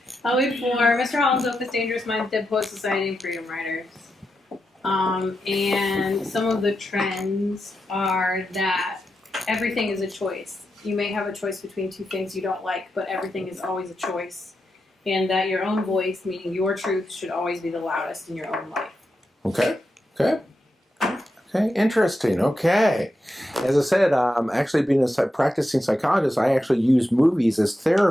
We have 4. Mr. Holland's Opus, Dangerous Minds, Dead Poet Society, and Freedom Riders. And some of the trends are that everything is a choice. You may have a choice between 2 things you don't like, but everything is always a choice. And that your own voice, meaning your truth, should always be the loudest in your own life. Okay. Okay. Okay. Interesting. Okay. As I said, actually being a practicing psychologist, I actually use movies as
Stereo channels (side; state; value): both; normal; correlation 0.87